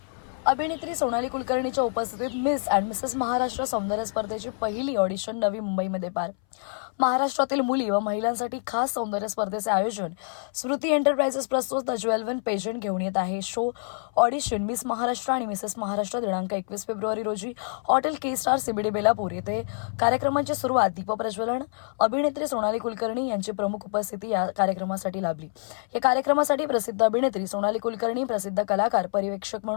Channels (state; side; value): silent; right; 60 dB below the other